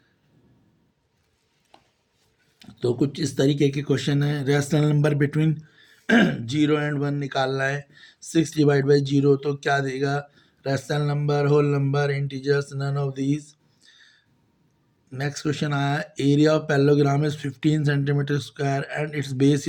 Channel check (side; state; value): both; identical; correlation 1.00